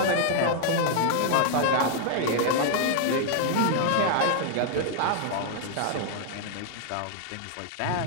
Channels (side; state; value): both; different; correlation 0.00